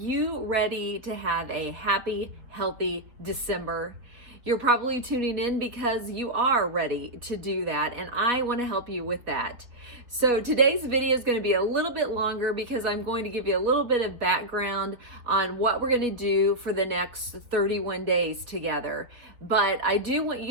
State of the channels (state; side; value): late; left; 4.1 ms